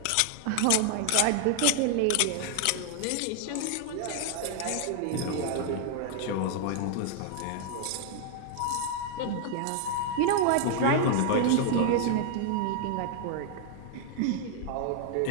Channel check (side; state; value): both; different; correlation 0.00